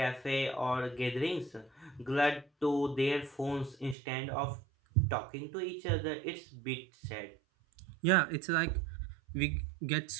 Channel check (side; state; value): left; drops out; at 4.0 s